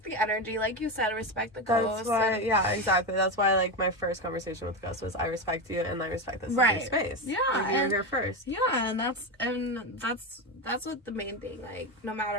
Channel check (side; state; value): both; normal; correlation 0.15